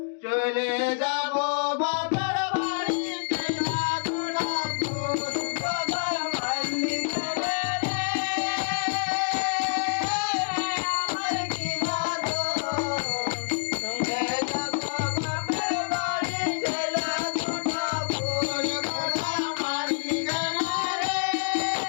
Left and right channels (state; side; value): silent; right; digital silence